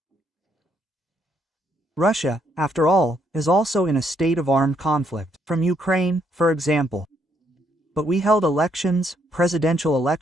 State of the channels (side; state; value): both; normal; correlation 0.73